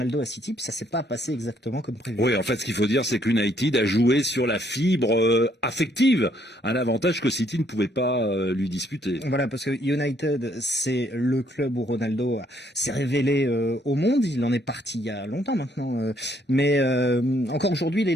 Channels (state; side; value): normal; both; correlation 0.69